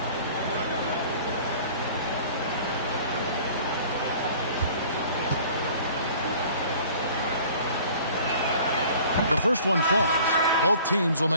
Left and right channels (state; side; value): inverted; both; correlation -0.49